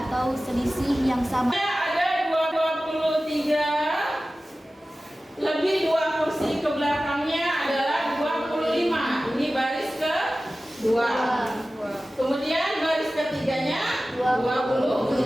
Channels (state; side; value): normal; both; correlation 0.96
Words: atau selisih yang sama. Ada 23 lebih 2 kursi ke belakangnya adalah 25. Ini baris ke 2. Kemudian baris ketiganya